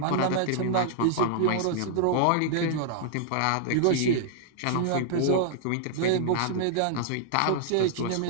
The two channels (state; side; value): different; both; correlation -0.01